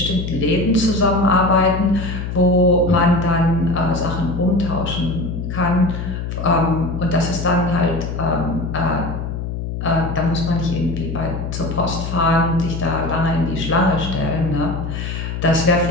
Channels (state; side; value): noise; left; hum, 5 dB below the sound